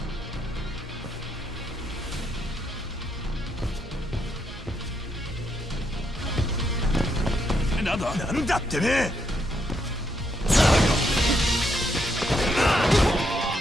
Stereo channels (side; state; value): both; normal; correlation 0.77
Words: another. なんだってね。